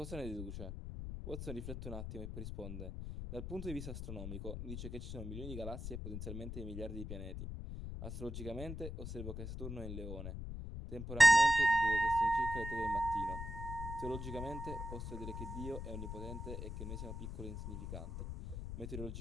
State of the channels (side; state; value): left; noise; rumble, 6 dB below the sound